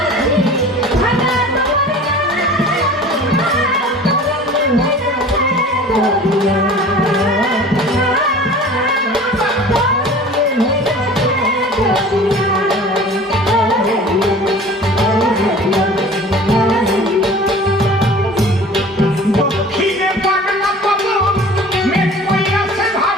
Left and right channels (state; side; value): normal; both; correlation 0.43